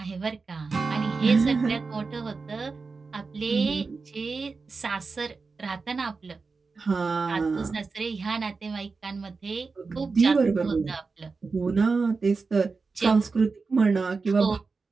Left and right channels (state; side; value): quieter; left; 4.4 dB